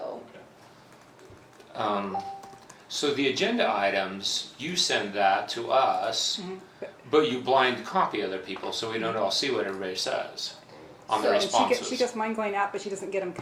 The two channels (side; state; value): both; identical; correlation 1.00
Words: So the agenda items, you send that to us, Mhm. but you blind copy other people, so we don't all see what everybody says on the So- And responses. she gets mine going out, but she doesn't get them